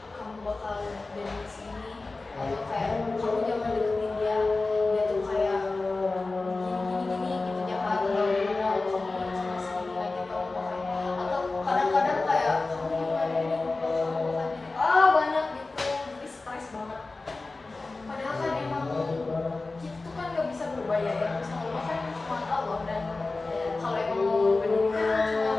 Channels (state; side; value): quieter; right; 3.5 dB